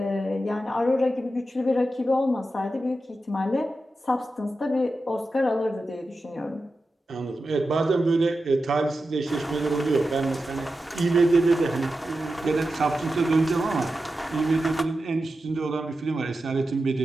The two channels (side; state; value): both; normal; correlation 0.91